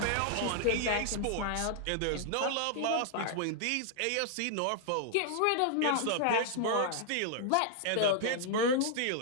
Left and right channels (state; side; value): different; both; correlation -0.01